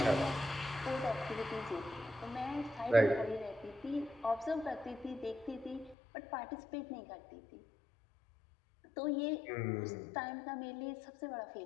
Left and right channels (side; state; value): right; drops out; at 6.0 s